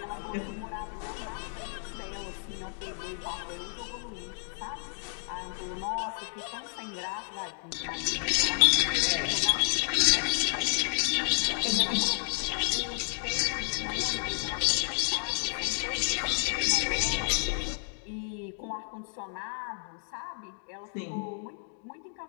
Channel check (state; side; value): silent; right; digital silence